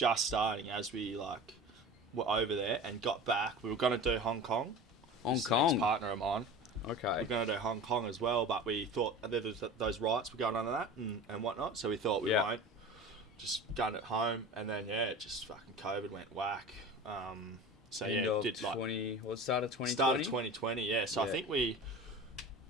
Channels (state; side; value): normal; both; correlation 0.35